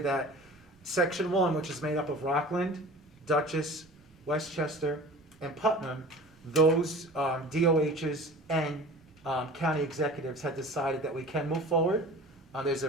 Section 1, which is made up of Rockland, Dutchess, Westchester, and Putnam, those DOHs and county executives had decided that we can move forward. There's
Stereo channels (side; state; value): right; noise; rumble, 29 dB below the sound